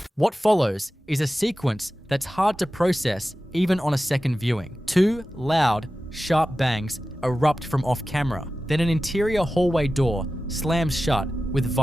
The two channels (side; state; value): both; normal; correlation 0.94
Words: What follows is a sequence that's hard to process even on a second viewing. Two loud, sharp bangs erupt from off camera. Then an interior hallway door slams shut with